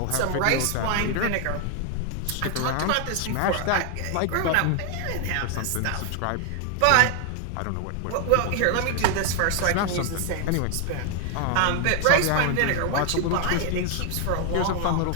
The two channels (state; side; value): different; both; correlation 0.00